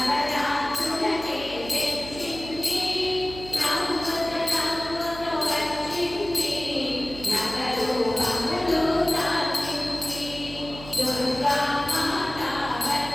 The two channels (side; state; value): right; noise; hum, 14 dB below the sound